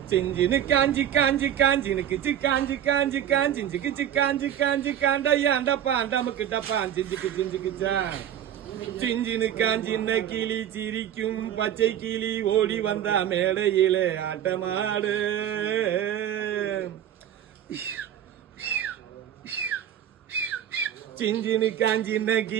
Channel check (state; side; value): quieter; left; 10.4 dB